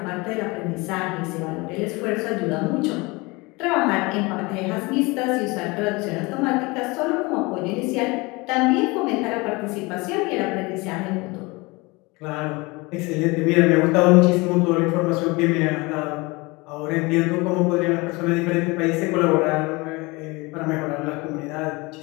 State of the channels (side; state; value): right; quieter; 24.9 dB